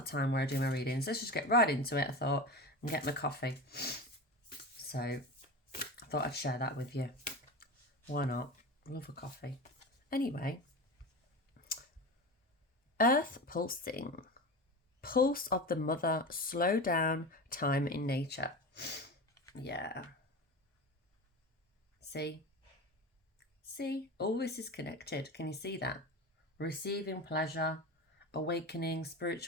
time where I do my readings. Let's just get right into it, I thought, and get my coffee. So I thought I'd share that with you. Why not? I love a coffee. Anyway, Earth pulsing. Pulse of the mother, slow down, time in nature. Yeah. See? All this is connected. Can you see that? Receiving pleasure, awakening,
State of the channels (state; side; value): normal; both; correlation 0.27